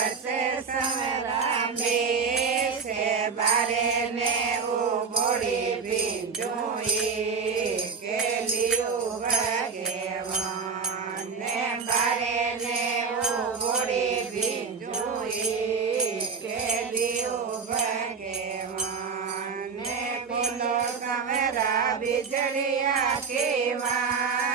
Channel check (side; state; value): left; quieter; 5.5 dB